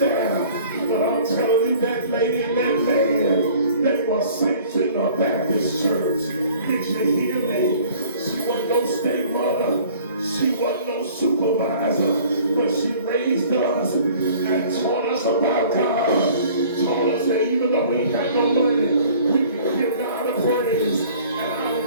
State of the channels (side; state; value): both; inverted; correlation -0.51